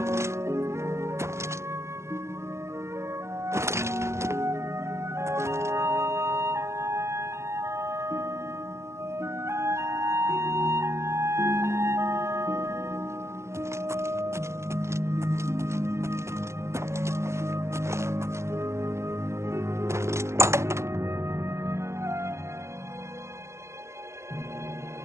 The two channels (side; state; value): left; late; 0.13 ms